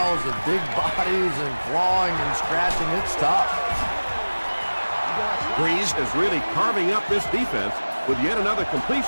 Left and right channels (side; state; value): both; inverted; correlation -1.00